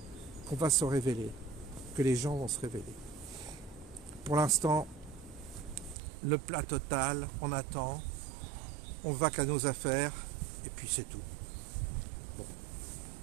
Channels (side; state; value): left; drops out; at 6.0 s